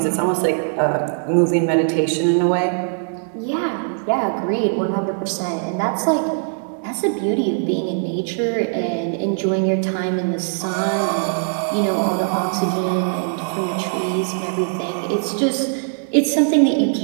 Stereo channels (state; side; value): silent; left; digital silence